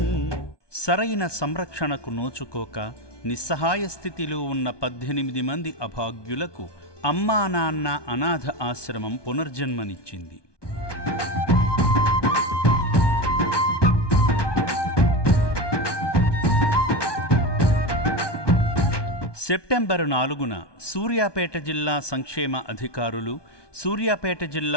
సరైన సంరక్షణకు నోచుకోక నిస్సహాయ స్థితిలో ఉన్న 18 మంది అభాగ్యులకు అమ్మా నాన్న అనాథ ఆశ్రమం పునర్జన్మనిచ్చింది. సెప్టెంబరు 4న సూర్యాపేట జిల్లా సంక్షేమ అధికారులు, సూర్యాపేట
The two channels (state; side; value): late; right; 1.2 ms